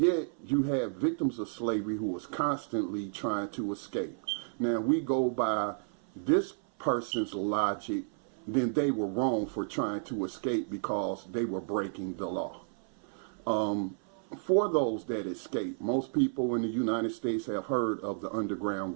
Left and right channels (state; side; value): silent; left; 56 dB below the other